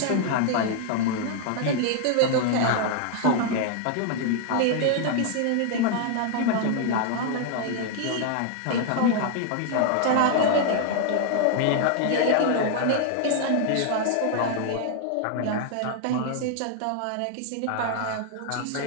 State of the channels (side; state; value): both; different; correlation 0.00